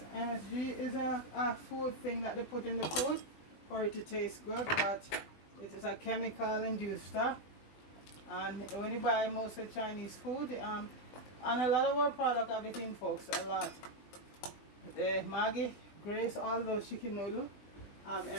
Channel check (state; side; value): late; right; 20 ms